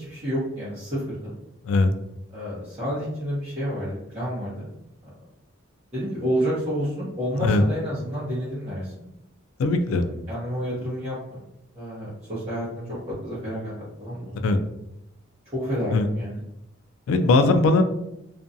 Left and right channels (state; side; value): normal; both; correlation 0.58